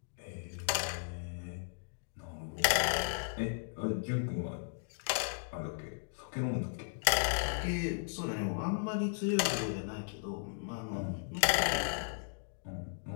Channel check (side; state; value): right; silent; digital silence